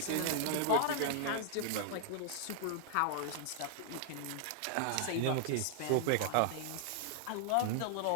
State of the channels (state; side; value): different; both; correlation 0.00